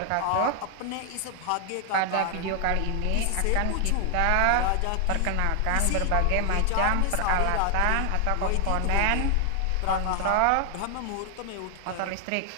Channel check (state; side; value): different; both; correlation 0.00